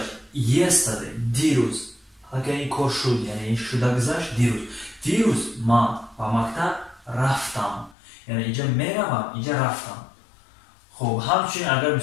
Yesterday دیروز حالا که این کار شد یعنی این شده گذشت دیروز من به مکتب رفتم یعنی اینجا میروم اینجا رفتم خب همچنین اگر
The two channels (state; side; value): drops out; right; at 8.0 s